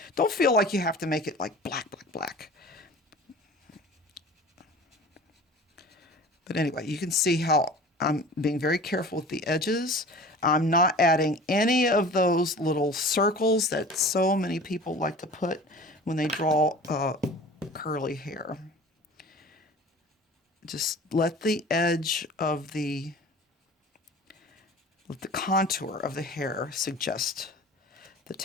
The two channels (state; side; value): normal; both; correlation 0.41